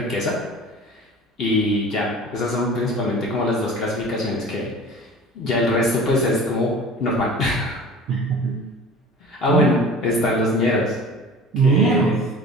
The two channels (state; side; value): normal; both; correlation 0.40